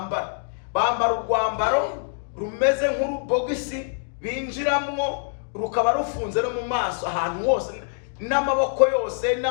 urwambaro rumeze nk'urubogisi binjiramo, rukaba rufunze no mu maso ahantu hose. n'amaboko yose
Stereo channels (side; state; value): right; silent; digital silence